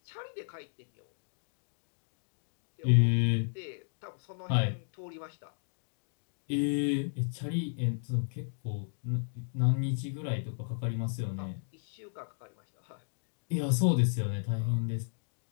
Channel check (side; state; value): right; silent; digital silence